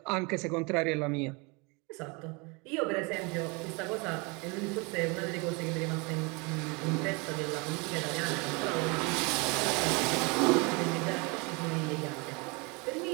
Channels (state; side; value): quieter; left; 29.3 dB